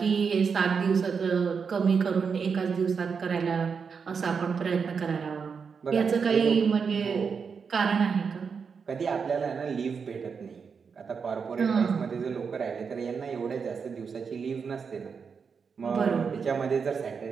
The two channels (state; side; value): quieter; left; 5.9 dB